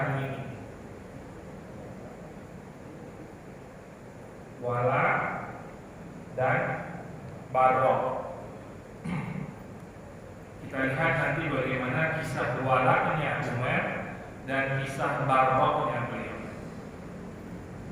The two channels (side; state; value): both; identical; correlation 1.00